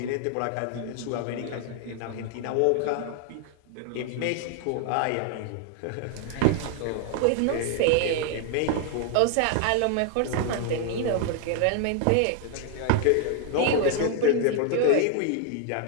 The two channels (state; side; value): different; both; correlation 0.00